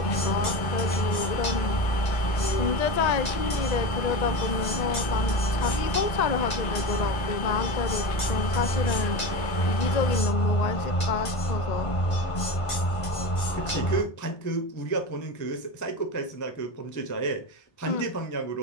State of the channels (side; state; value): right; late; 1.5 ms